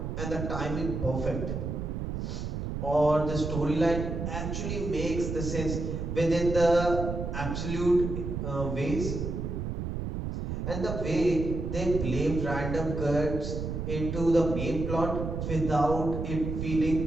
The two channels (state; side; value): noise; right; rumble, 4 dB below the sound